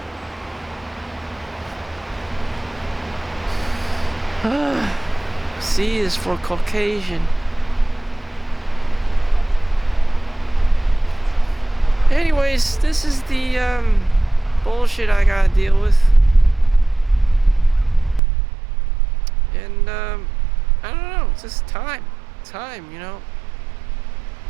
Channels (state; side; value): drops out; left; at 18.2 s